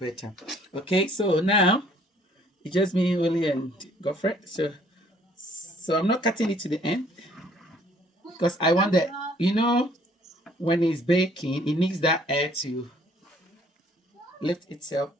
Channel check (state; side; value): normal; both; correlation 0.60